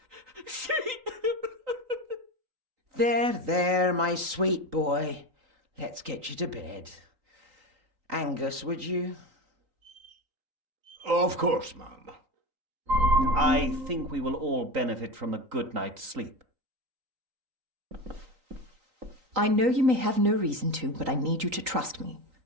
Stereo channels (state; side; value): late; left; 3.9 ms